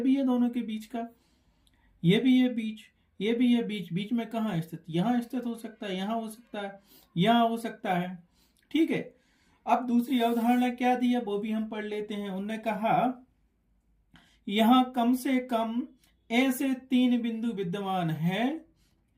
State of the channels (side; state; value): both; identical; correlation 1.00